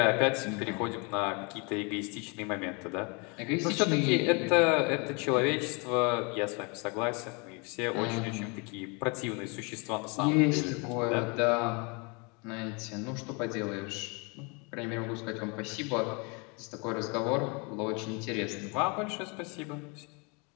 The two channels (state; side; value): quieter; right; 31.7 dB